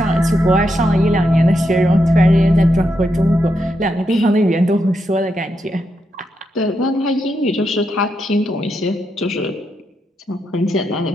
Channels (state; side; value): normal; both; correlation 0.83